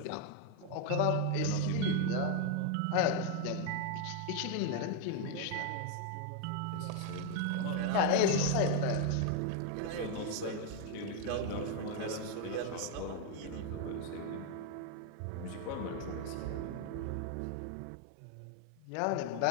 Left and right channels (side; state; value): both; different; correlation 0.01